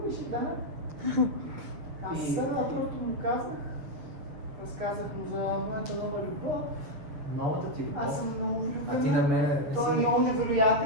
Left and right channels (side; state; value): left; late; 7.1 ms